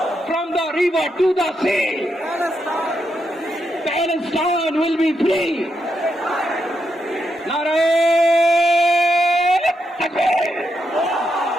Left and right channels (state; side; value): normal; both; correlation 0.82